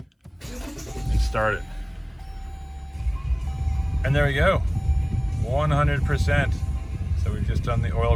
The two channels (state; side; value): identical; both; correlation 1.00